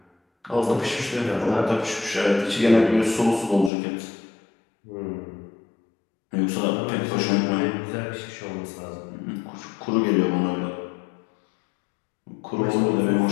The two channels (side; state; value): right; drops out; at 3.7 s